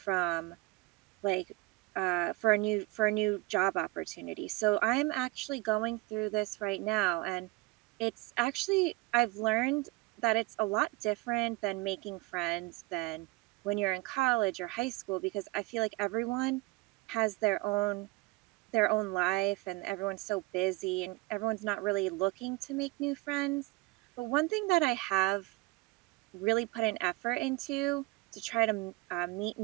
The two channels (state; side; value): quieter; left; 22.4 dB